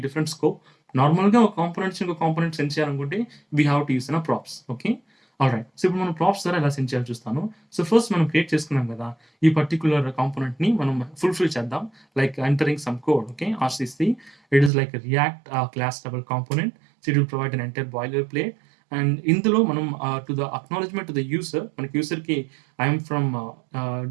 different scope. నార్మల్‌గా ఒక components ఇంకో component send చేయాలనుకుంటే we have to use props. Okay. Alright. So ఇప్పుడు మనం ప్రాప్స్ ద్వారా ఎలా సెండ్ చేయాలో చూస్తాను. సో ఫస్ట్ మనం క్రియేట్ చేసుకున్నాం కదా! ఈ పర్టిక్యులర్ కాంపోనెంట్‌ని మనం ఫుల్‌ఫిల్ చేద్దాం. Like entering some code. Okay. RCC it is like React class level component. So it will provide an entire boilerplate. And ఇందులో మనం to the acknowledgement to the user మనకి యూజర్‌కి I'm from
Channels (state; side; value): drops out; left; at 14.7 s